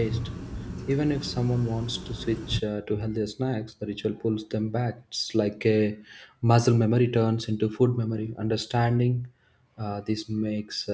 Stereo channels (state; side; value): identical; both; correlation 1.00